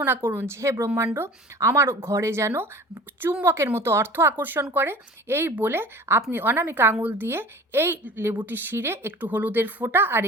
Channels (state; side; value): normal; both; correlation 0.42